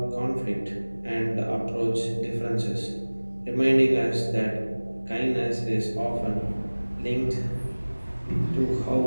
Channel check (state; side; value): inverted; both; correlation -1.00